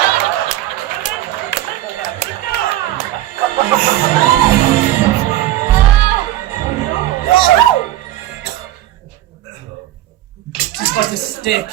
but a stick.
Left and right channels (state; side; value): quieter; left; 14.3 dB